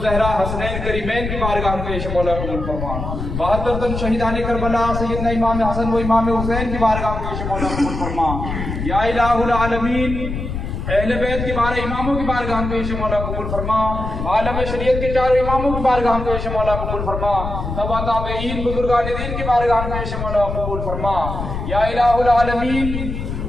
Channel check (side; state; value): left; noise; rumble, 5 dB below the sound